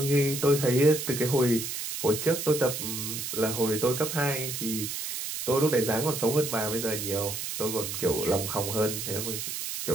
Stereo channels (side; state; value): right; noise; hiss, 5 dB below the sound